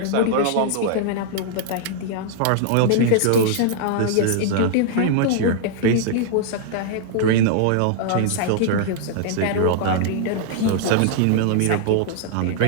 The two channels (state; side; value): different; both; correlation -0.01